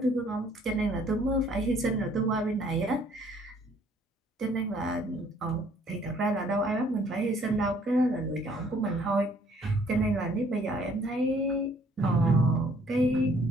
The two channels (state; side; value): normal; both; correlation 0.61